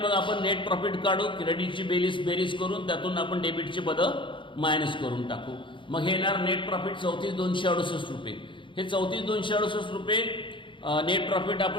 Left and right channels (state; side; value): late; right; 0.24 ms